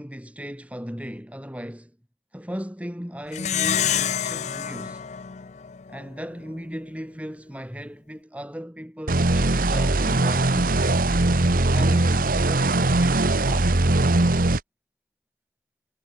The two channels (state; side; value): normal; both; correlation 0.60